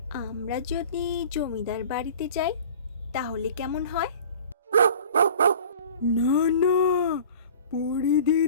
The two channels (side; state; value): both; inverted; correlation -0.43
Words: আমরা যদি জমিদার বাড়িতে যাই তাহলে কেমন হয়? না না, পড়ি